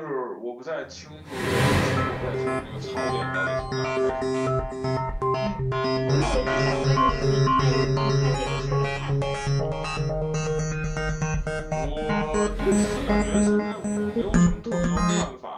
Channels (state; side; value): identical; both; correlation 1.00